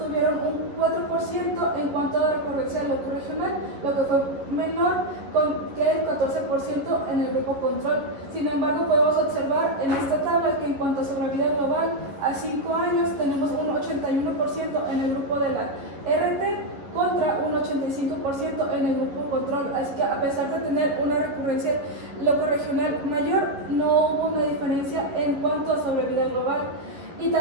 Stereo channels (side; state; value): left; late; 11 ms